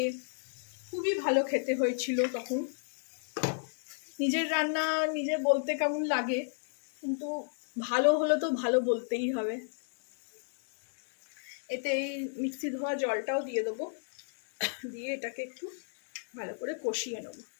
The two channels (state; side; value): silent; right; digital silence